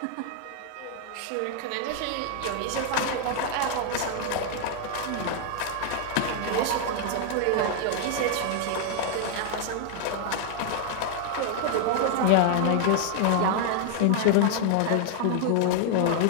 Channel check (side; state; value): both; different; correlation 0.00